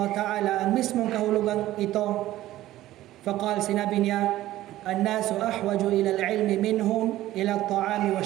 ta'ala ang mismong kahulugang ito. Faqal, sinabi niya, الناس أحوج إلى العلم منهم إلى الطعام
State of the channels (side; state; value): left; quieter; 15.0 dB